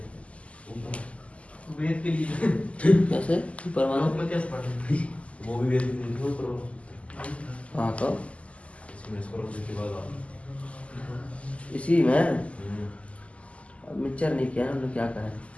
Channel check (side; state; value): right; late; 0.063 ms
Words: वेद के लिए कैसे परमाणु में कैसे पढ़ते? वो भी वेद में नहीं करो। हाँ तो इसमें इसको रखने के बाद इसी में अब मिक्सचर नहीं किया हम लोग, क्या करें?